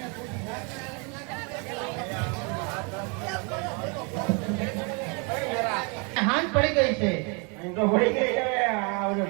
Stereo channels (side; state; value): left; quieter; 33.5 dB